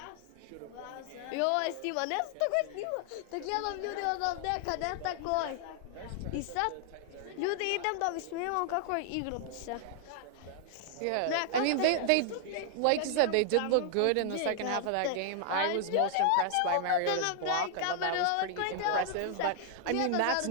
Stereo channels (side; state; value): both; different; correlation 0.00